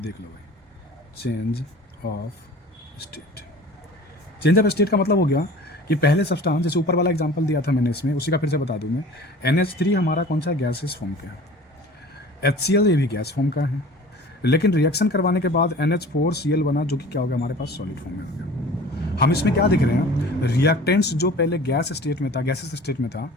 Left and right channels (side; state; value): both; normal; correlation 0.43